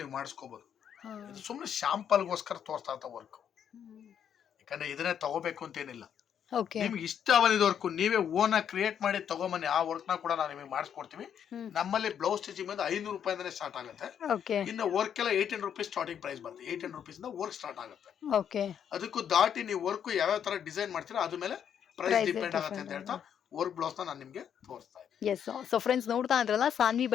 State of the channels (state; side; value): quieter; right; 8.7 dB